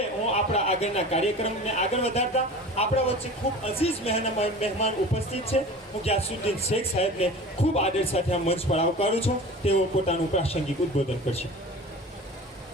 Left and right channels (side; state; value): both; normal; correlation 0.38